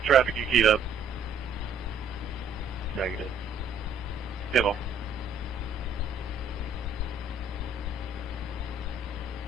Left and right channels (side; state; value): left; quieter; 3.4 dB